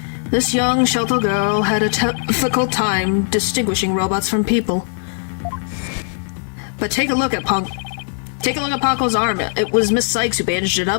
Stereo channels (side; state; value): right; silent; digital silence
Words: This young, sheltered girl had a difficult time distinguishing robots from people. But take a look at Ponko's arm. It was Miss Sykes who bandaged it